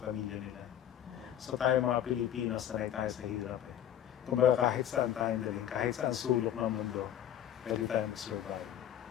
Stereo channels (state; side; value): quieter; right; 10.7 dB